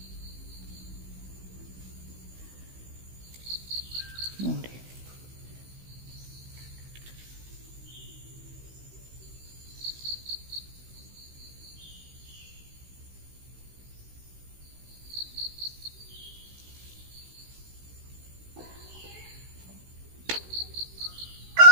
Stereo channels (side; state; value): left; late; 16 ms